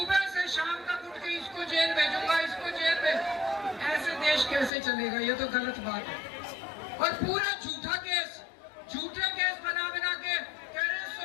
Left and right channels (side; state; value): right; drops out; at 4.7 s